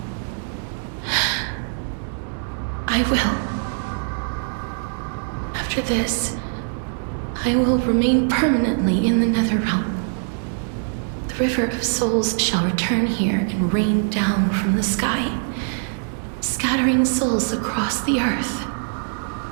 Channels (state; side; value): silent; left; digital silence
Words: I will. After this, I will remain permanently in the Netherrealm. The River of Souls shall return here and rain down from the sky, scattering souls across the earth.